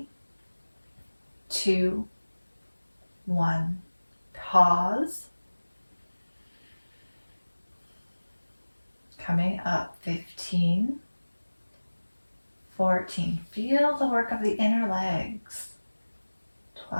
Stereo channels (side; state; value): both; inverted; correlation -1.00